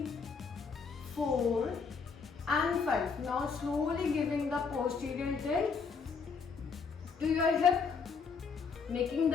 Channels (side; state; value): right; quieter; 5.4 dB